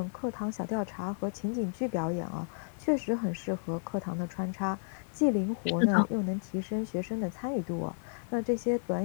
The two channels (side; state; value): right; silent; 56 dB below the other